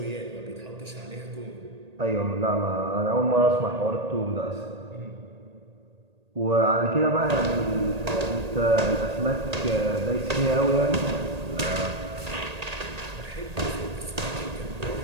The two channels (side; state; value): left; late; 1.8 ms